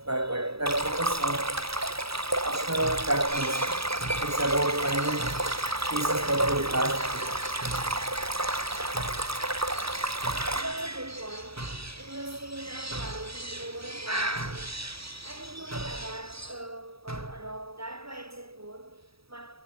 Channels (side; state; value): left; late; 0.77 ms